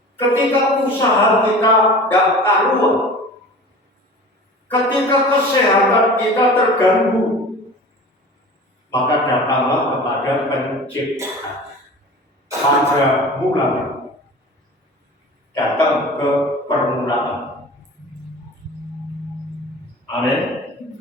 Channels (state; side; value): normal; both; correlation 0.39